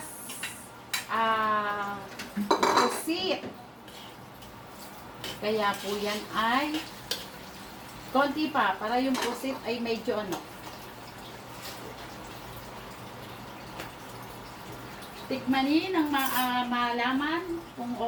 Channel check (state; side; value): identical; both; correlation 1.00